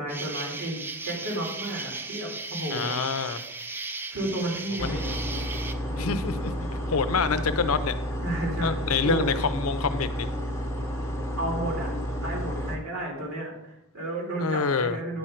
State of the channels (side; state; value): both; normal; correlation 0.25